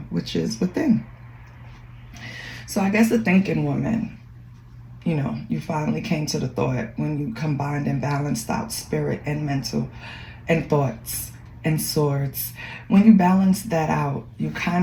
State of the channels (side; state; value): both; identical; correlation 1.00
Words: which is within. So I guess the thinking woman, you finally came to the thought when you combined and balanced out spirit and mental and thoughts and swords. When you balance that out, you